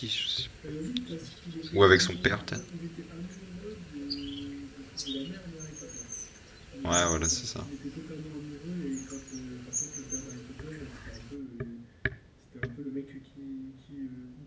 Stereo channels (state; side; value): identical; both; correlation 1.00